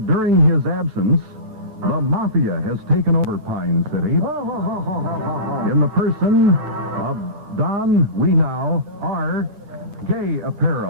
during his absence, the Mafia has taken over Pine City in the person of Don Weenow, R. Gay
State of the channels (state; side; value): late; left; 9.1 ms